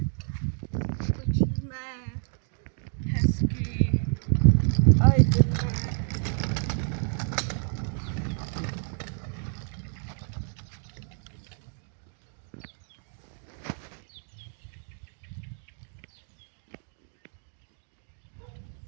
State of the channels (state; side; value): silent; left; 58 dB below the other